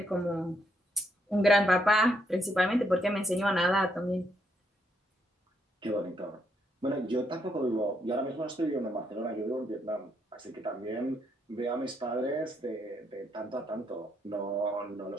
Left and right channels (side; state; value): both; normal; correlation 0.76